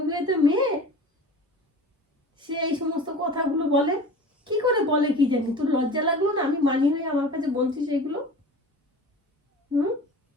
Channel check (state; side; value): normal; both; correlation 0.38